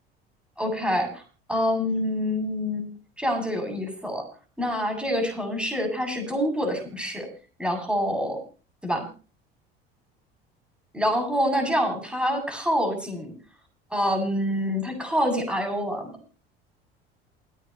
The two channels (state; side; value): normal; both; correlation 0.59